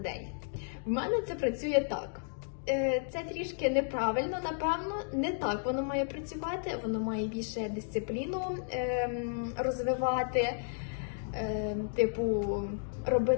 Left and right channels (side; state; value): right; silent; digital silence